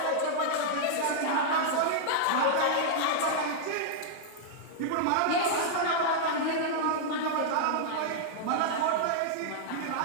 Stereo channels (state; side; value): different; both; correlation -0.01